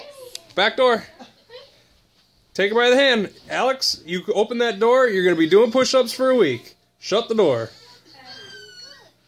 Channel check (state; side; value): identical; both; correlation 1.00